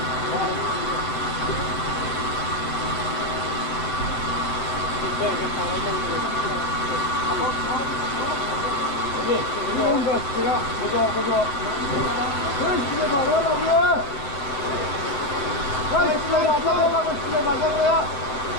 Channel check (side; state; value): right; late; 7.6 ms